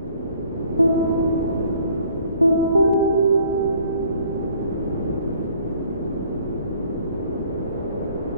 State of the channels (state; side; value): inverted; both; correlation -0.57